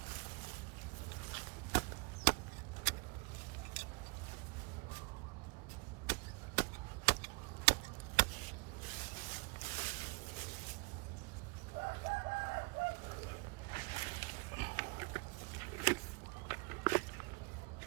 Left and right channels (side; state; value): left; quieter; 28.5 dB